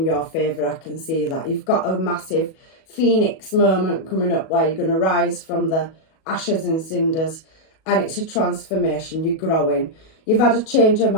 your favour. I can see that. You've got a massive phoenix moment coming up where you're going to rise from the ashes and cinders, and it's a transformation. You're growing. You've had a change of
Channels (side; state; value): right; late; 37 ms